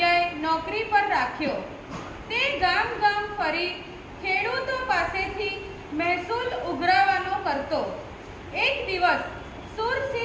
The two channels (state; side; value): identical; both; correlation 1.00